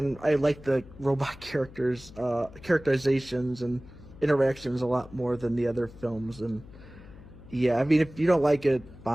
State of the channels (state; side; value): noise; left; hum, 19 dB below the sound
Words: I like the robot characters, characterizations and interactions a lot more than the other films. And yeah, I mean, if you don't like it,